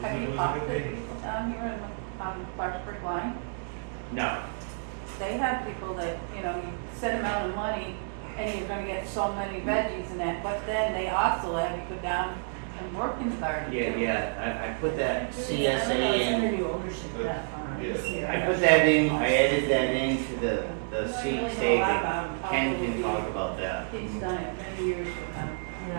Have you talked to people down here in the, Clarksburg line? No. They have people that, you know, you set amount of money and you're gonna get so many veggies and that, but then they also have you go down and work in the garden too. Yeah, I put that I don't know, CSA it's under in. new ownership of that farm. Yeah. I put that in, I added that into the I don't seat really know a lot saving. about 'em. Ken can Probably talk about that He's done it many years with them.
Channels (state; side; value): silent; left; digital silence